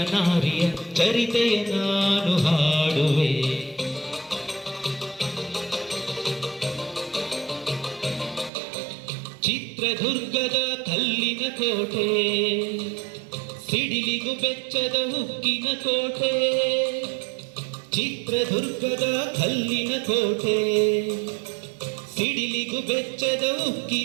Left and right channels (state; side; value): drops out; left; at 8.5 s